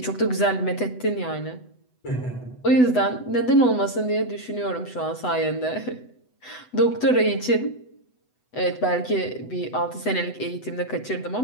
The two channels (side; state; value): right; late; 8.0 ms